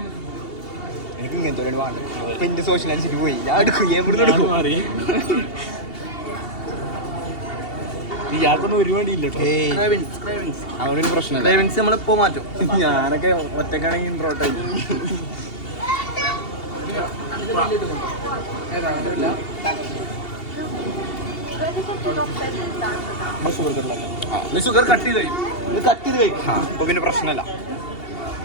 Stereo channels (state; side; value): late; right; 2.7 ms